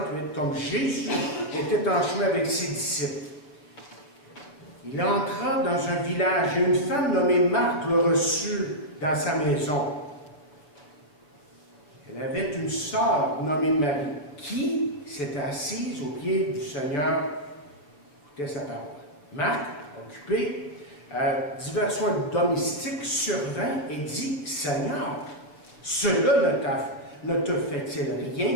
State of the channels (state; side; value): late; right; 6.8 ms